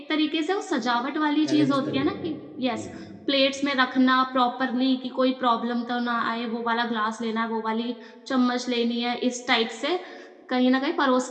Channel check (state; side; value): identical; both; correlation 1.00